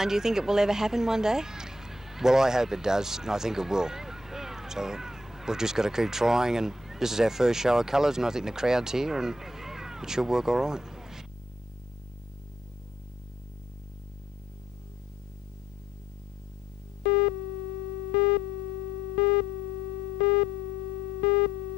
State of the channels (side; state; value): both; normal; correlation 0.73